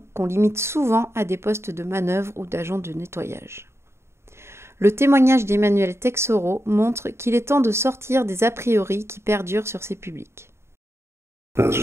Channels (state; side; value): late; left; 0.13 ms